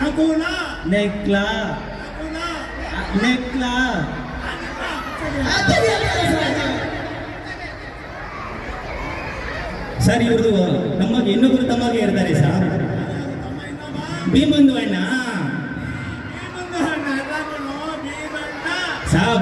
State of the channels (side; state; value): both; identical; correlation 1.00